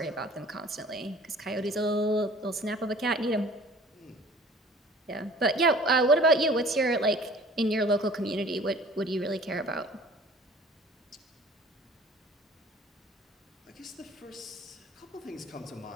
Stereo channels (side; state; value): both; normal; correlation 0.49